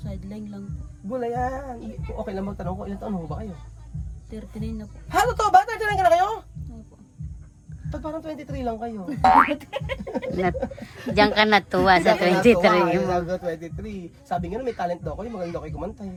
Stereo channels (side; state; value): both; identical; correlation 1.00